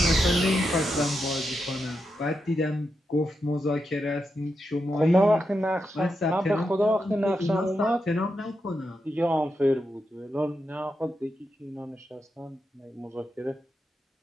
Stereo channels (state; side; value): normal; both; correlation 0.86